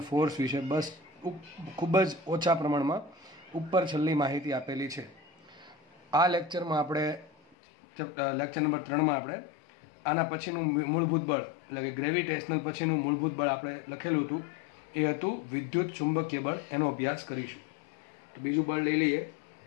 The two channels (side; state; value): right; drops out; at 7.6 s